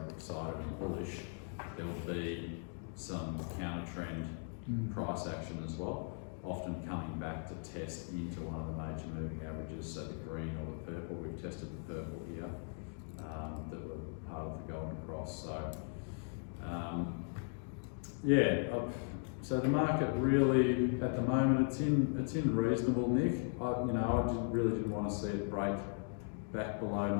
excited and bullish, there'll be some counter trend price action as well, often coming back to test into one of the major moving averages, so the green or the purple. We've tested the purple here that were part of the golden cross. So so the market really at the moment it's in reasonable nick. I really didn't want to see it break back below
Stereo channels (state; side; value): silent; right; 52 dB below the other